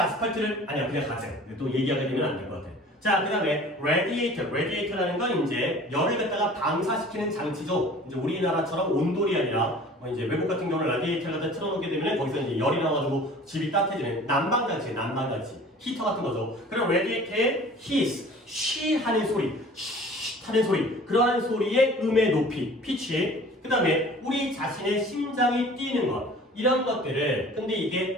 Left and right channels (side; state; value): both; normal; correlation 0.46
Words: 아니야 그냥 가자. 또 얘기하게 되면 안 될 것 같아. 자, 그 다음에 radiator라는 건 이제 열을 갖다가 방사시키는 장치죠. 이제 우리나라처럼 온돌이 아니라 뭐 이제 외국 같은 경우는 라디에이터를 갖다 틀어놓게 되면 거기서 이제 열이 나와가지고 집이 따뜻해지는 난방장치, 히터 같은 거죠. 그럼 radiator의 hiss, 쉬 하는 소리, 쉬 하는 소리, 그러한 소리의 음의 높이, 피치. 그 다음에 우리 자신의 심장이 뛰는 것. 이런 것들을 근데 이게